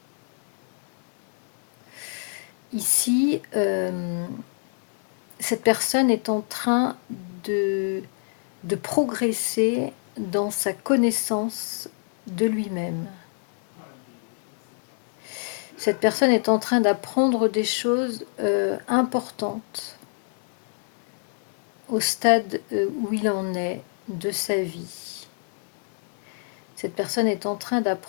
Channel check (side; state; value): right; silent; 58 dB below the other